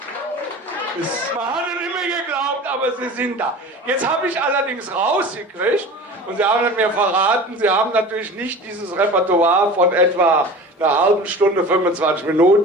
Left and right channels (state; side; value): normal; both; correlation 0.37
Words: es immer geglaubt, aber sie sind da. Jetzt habe ich allerdings rausgekriegt, und Sie haben mir verraten, Sie haben natürlich nicht dieses Repertoire von etwa einer halben Stunde, 25